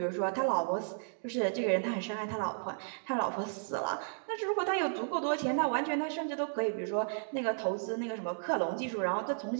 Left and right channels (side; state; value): left; silent; digital silence